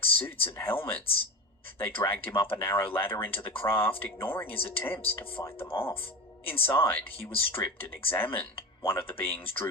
suits and helmets. They dragged him up a narrow ladder into the craft, ignoring his attempts to fight them off. Inside, he was stripped and examined. One of the beings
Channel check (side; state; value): both; normal; correlation 0.26